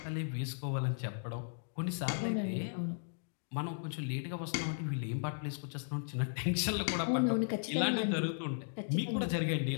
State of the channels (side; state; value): right; silent; digital silence